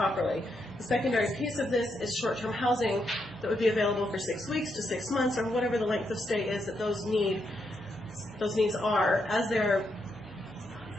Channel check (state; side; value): normal; both; correlation 0.80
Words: The secondary piece of this is short-term housing that would be available for 6 weeks to 6 months, or whatever the length of stay is that those needs are as they're